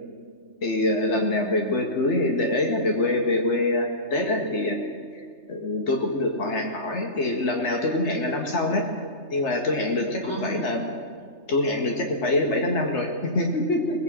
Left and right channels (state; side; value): late; right; 3.3 ms